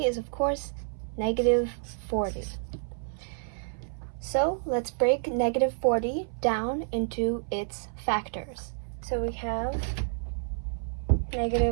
is, of course, negative 40. So let's break negative 40 down into its factors. So we have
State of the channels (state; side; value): silent; left; 57 dB below the other